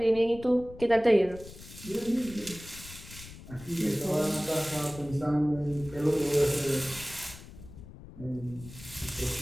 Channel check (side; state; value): left; noise; rumble, 16 dB below the sound